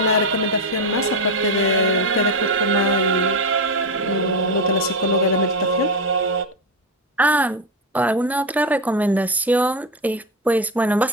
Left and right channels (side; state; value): both; normal; correlation 0.11